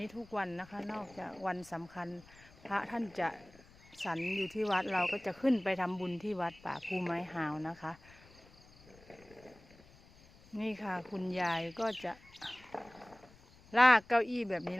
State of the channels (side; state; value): left; noise; rumble, 24 dB below the sound